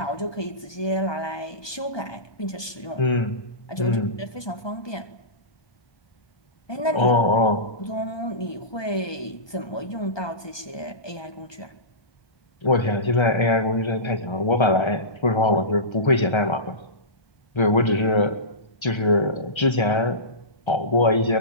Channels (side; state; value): right; late; 1.2 ms